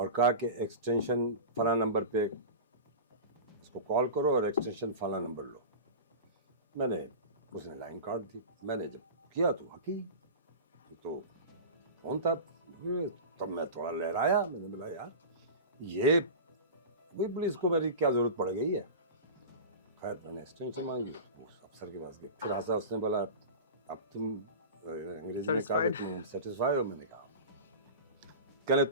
कहा कि एक्सटेंशन फला नंबर पे इसको कॉल करो और एक्सटेंशन फला नंबर लो। मैंने, उसने लाइन काट दी। मैंने जब किया तो वाकई तो फोन था। तब मैं थोड़ा लहराया, मैंने बोला यार ये वही पुलिस को मेरी क्या जरूरत पड़ गई है। खैर मैंने एक्सटेंशन मांगी, उस अफसर के पास गए, फिर ऐसा उसने बोला अब तुम अंग्रेजी में कहा कि तुम सेटिस्फाई हो? मैंने कहा कहने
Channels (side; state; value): both; inverted; correlation -0.30